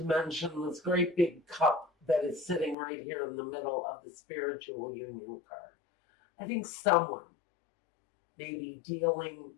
mention this great big cup that is sitting right here in the middle of the spiritual union card. I think someone may be dealing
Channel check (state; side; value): drops out; right; at 2.8 s